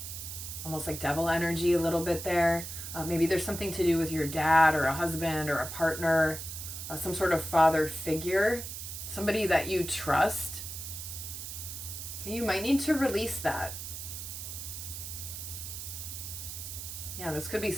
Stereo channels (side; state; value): right; noise; hiss, 8 dB below the sound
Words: Almost like devil energy a little bit there. Maybe there's something to do with your dad or a husband or a partner, some sort of father figure, somebody that you trust. You might need to release that. Yeah, this could be